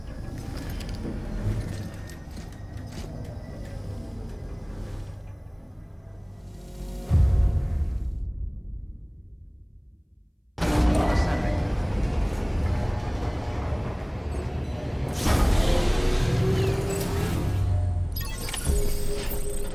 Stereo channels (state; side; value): identical; both; correlation 1.00